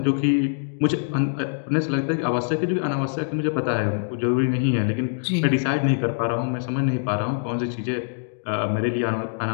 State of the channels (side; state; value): right; silent; digital silence